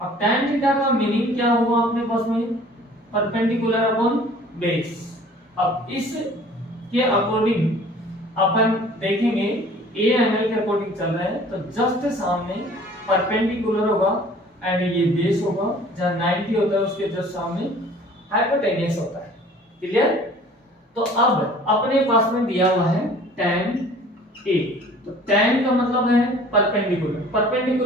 अब टैन थीटा का मीनिंग क्या हुआ अपने पास में, परपेंडिकुलर अपॉन बेस। अब इस के अकॉर्डिंग अपन देखेंगे ए एंगल के अकॉर्डिंग चल रहा है तो जस्ट सामने परपेंडिकुलर होगा एंड ये बेस होगा, जहां 90 होता है उसके जस्ट सामने हाइपोटेन्यूस होता है। क्लियर? तो अब अपने पास में दिया हुआ है tan A, तो tan का मतलब है परपेंडिकुलर।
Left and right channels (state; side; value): normal; both; correlation 0.50